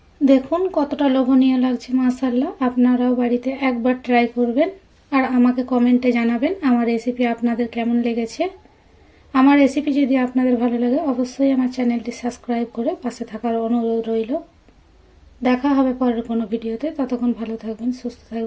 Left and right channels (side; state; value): both; identical; correlation 1.00